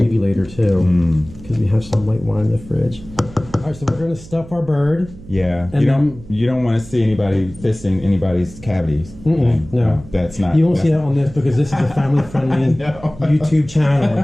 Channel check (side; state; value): right; noise; hum, 18 dB below the sound